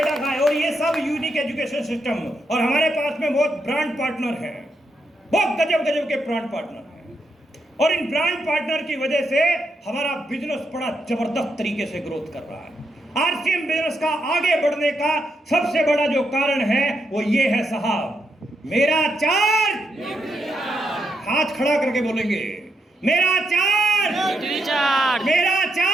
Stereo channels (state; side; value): normal; both; correlation 0.81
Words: खाए, और ये सब यूनिक एजुकेशन सिस्टम। और हमारे पास में बहुत ब्रांड पार्टनर हैं, बहुत गजब गजब के ब्रांड पार्टनर हैं, और इन ब्रांड पार्टनर की वजह से हमारा बिजनेस बड़ा जबरदस्त तरीके से ग्रोथ कर रहा है। आरसीएम बिजनेस का आगे बढ़ने का सबसे बड़ा जो कारण है वो ये है साहब, मेरा चार्ज। हाथ खड़ा करके बोलेंगे, मेरा चार्ज, मेरा